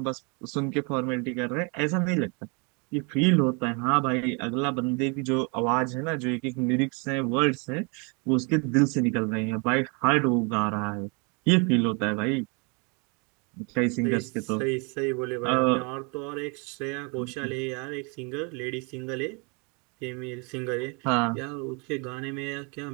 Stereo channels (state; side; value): quieter; left; 33.2 dB